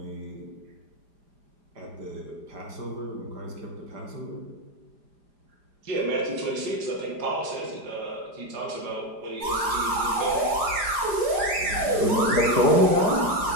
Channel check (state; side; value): late; left; 4.9 ms